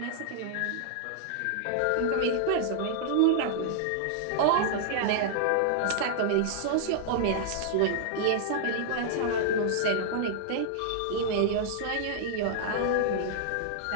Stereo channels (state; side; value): different; both; correlation -0.01